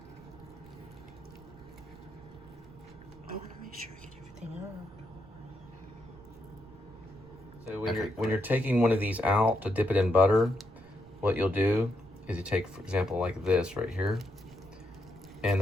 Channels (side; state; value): right; noise; rumble, 22 dB below the sound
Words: want to make sure I get everything out. So when you're taking one of these out to dip it in butter, what you'll do is you take, for example, like this right here, and